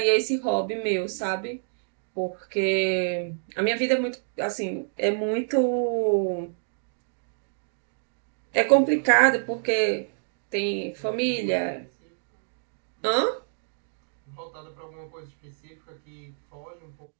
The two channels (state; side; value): silent; left; digital silence